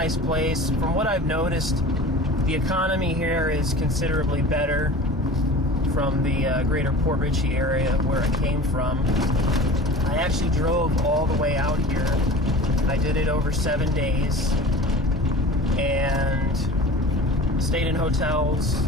place. From what I've noticed, the economy here is considerably better from the greater Port Richey area where I came from. I actually drove all the way out here. I did it over 7 days and stayed in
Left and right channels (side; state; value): both; normal; correlation 0.38